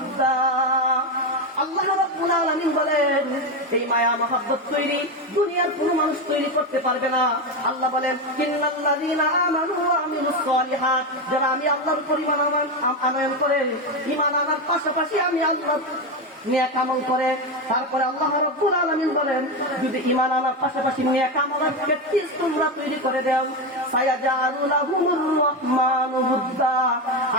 আল্লাহ রাব্বুল আলামিন বলেন, এই মায়া মহব্বত তৈরি দুনিয়ার কোনো মানুষ তৈরি করতে পারবে না। আল্লাহ বলেন, ইন্নাল্লাযীনা আমানু ওয়া আমিলুস সালিহাত, যারা আমি আল্লাহর উপর ঈমান আনয়ন করে, ঈমান আনার পাশাপাশি আমি আল্লাহর নেক আমল করে, তারপরে আল্লাহ রাব্বুল আলামিন বলেন, যদি ঈমান আনার পাশাপাশি নেক আমলের প্র্যাকটিস তোমরা তৈরি করে দাও, সায়াজআলু লাহুমুর রাহমানু বুদ্দা,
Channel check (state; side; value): normal; both; correlation 0.13